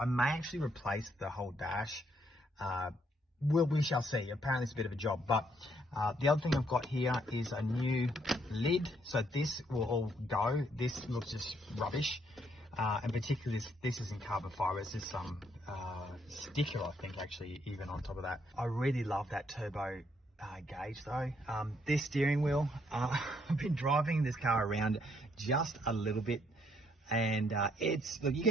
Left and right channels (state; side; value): normal; both; correlation 0.71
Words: may actually replace the whole dash. We shall see. Apparently it's a bit of a job, but the other thing I've got here is a new lid. So this will all go. This looks just rubbish. And particularly this isn't carbon fiber, it's just some sticker, I think, actually, even on top of that. I really love that turbo gauge though. This steering wheel, I've been driving this car around just a little bit, and look, you